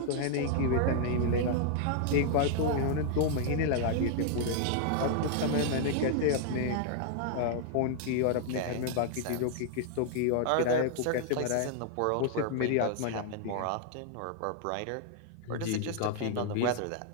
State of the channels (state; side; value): different; both; correlation -0.01